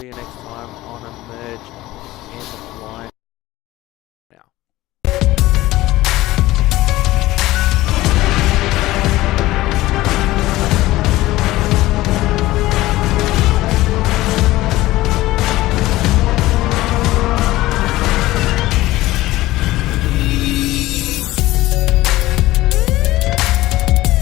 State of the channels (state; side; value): quieter; right; 17.4 dB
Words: you next time on EmergNYC.